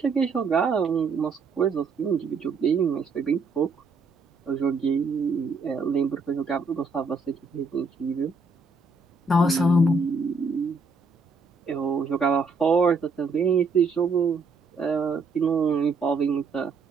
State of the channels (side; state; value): left; quieter; 4.0 dB